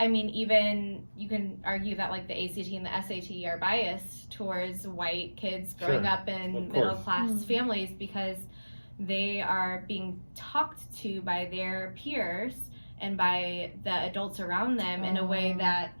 mean, even you can argue that like the ACT and the SAT are biased towards white kids growing up in middle class families, because they are being talked to by their peers and by the adults around them in a way that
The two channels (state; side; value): inverted; both; correlation -1.00